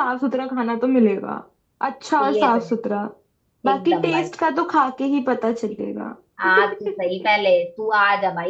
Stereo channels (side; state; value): both; identical; correlation 1.00